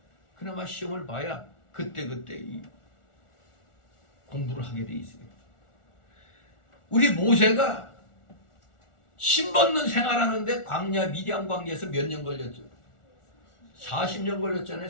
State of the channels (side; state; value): right; late; 1.4 ms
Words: 그나마 시험을 봐야 그때그때 이 공부를 하게 돼 있어요. 우리 모세가 신벗는 생활하는데 광야 미디안 광야에서 몇 년 걸렸죠? 40년 걸렸잖아요.